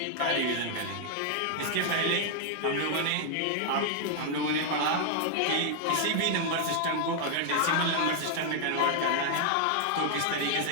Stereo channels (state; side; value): different; both; correlation 0.00